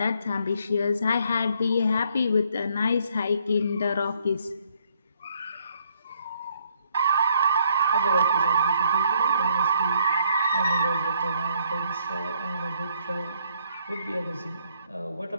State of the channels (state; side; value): inverted; both; correlation -0.68